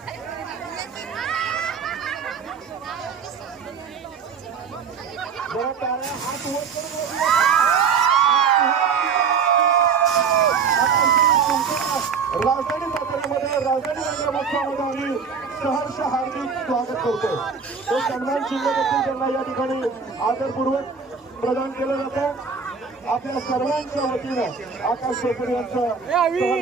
जरा टाळ्या हात वर करून राजधानी साताऱ्यामध्ये राजधानी रंगमहोत्सवामध्ये आम्ही सहर्ष हार्दिक स्वागत करतो. तो सन्मान चिन्ह देखील त्यांना या ठिकाणी आदरपूर्वक प्रदान केलं जातं. आपल्या सर्वांच्या वतीनं आकाश शेखर यांचं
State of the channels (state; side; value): quieter; left; 6.0 dB